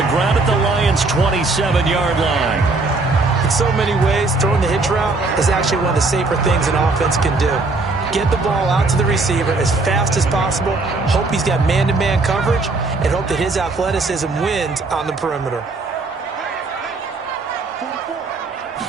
ground at the Lions' 27-yard line. In so many ways, throwing the hitch route is actually one of the safer things an offense can do. Get the ball out to the receiver as fast as possible, hope he's got man-to-man coverage, and hope that his athleticism wins on the perimeter.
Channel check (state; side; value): quieter; left; 3.5 dB